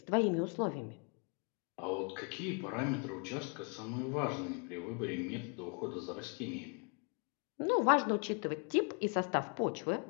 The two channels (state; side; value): quieter; right; 37.1 dB